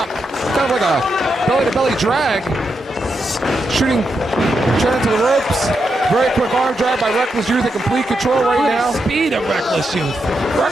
Kind of like a belly-to-belly drag. Shooting Trent into the ropes. Very quick arm drag by Reckless Youth in complete control right now. The speed of Reckless Youth.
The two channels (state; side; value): normal; both; correlation 0.84